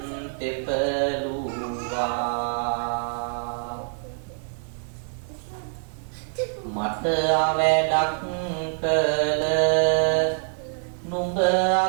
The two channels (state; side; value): silent; left; digital silence